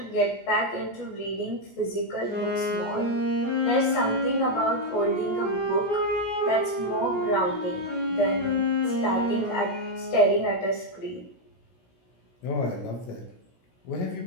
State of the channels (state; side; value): late; right; 16 ms